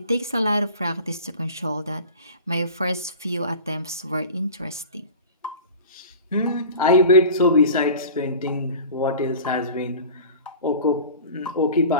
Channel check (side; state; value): both; inverted; correlation -0.38